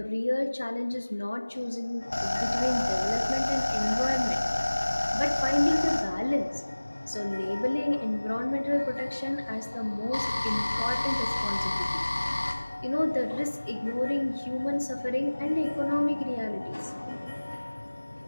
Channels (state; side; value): inverted; both; correlation -1.00